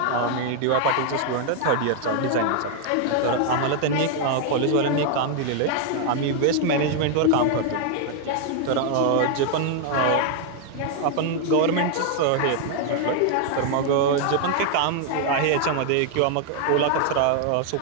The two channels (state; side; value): different; both; correlation 0.00